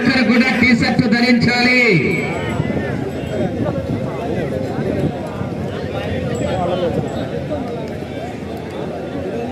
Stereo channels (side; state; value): both; identical; correlation 1.00